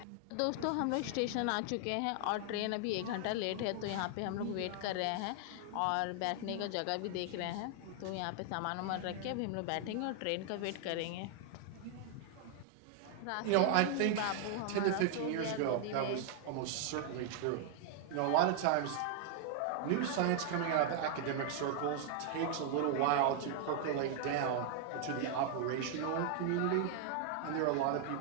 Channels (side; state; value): both; different; correlation 0.00